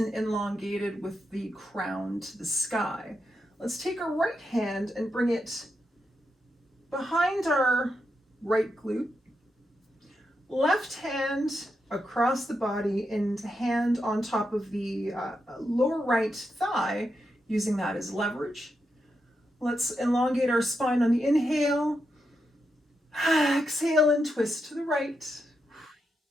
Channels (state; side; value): normal; both; correlation 0.85